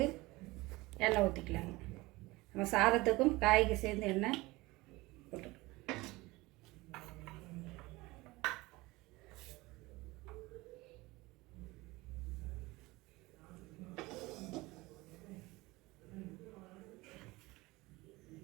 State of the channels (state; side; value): quieter; left; 21.2 dB